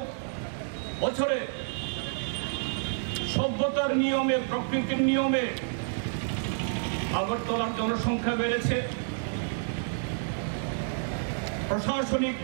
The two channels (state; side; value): silent; left; digital silence